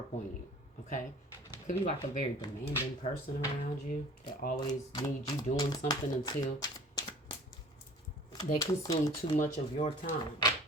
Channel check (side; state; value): both; normal; correlation 0.47